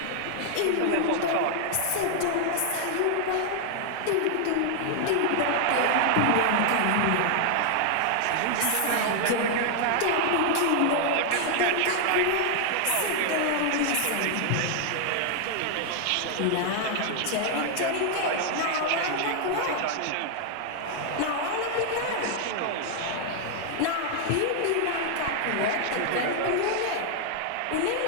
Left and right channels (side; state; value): both; different; correlation 0.00